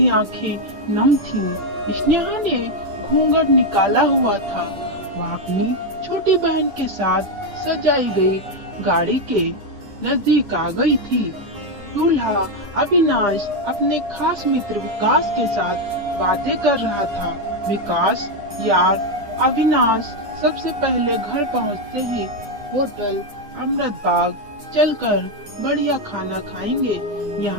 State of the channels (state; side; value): late; left; 9.9 ms